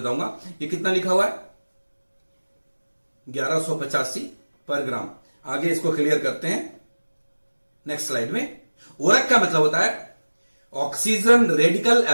ये कितना लिखा हुआ है? 1185 पर ग्राम। आगे इसको क्लियर करते हैं नेक्स्ट स्लाइड में। ओरेक का मतलब होता है oxygen radical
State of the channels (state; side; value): inverted; both; correlation -1.00